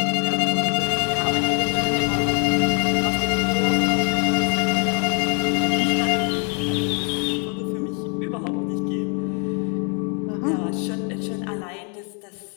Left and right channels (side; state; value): right; quieter; 38.1 dB